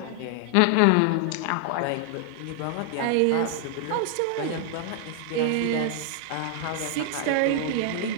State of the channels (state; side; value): different; both; correlation 0.00